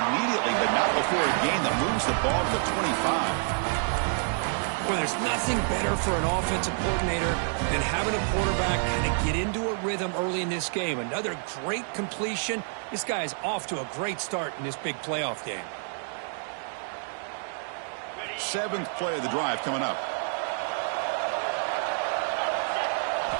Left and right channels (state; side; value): silent; left; 59 dB below the other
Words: but not before a gain that moves the ball to the 25. Well, there's nothing better for an offensive coordinator than having a quarterback kind of get into a rhythm early in this game. Another great completion. This guy is off to a great start in this big playoff game. 7th play of the drive coming up.